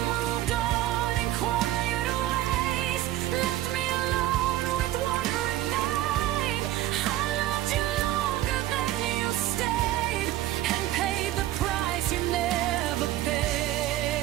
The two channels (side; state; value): left; quieter; 14.3 dB